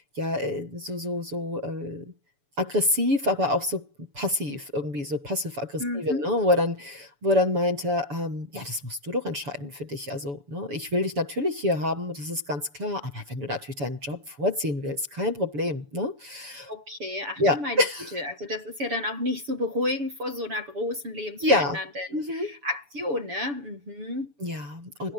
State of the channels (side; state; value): left; late; 7.0 ms